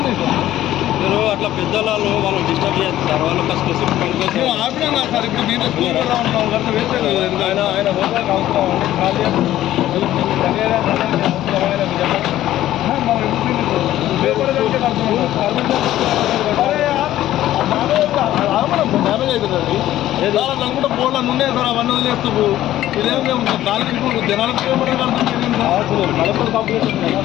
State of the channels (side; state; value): right; quieter; 13.6 dB